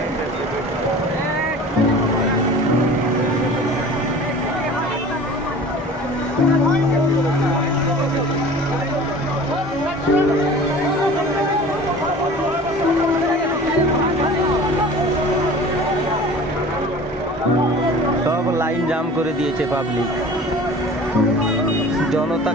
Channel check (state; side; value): normal; both; correlation 0.42